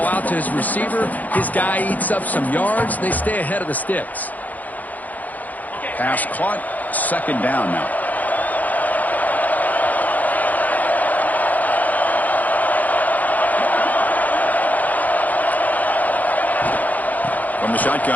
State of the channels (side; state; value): right; late; 0.080 ms